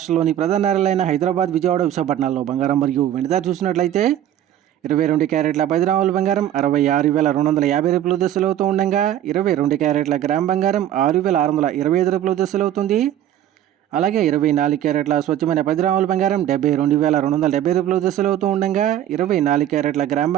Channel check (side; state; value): left; quieter; 11.7 dB